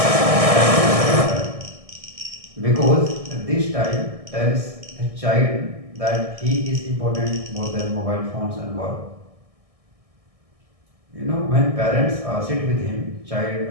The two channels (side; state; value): left; late; 1.6 ms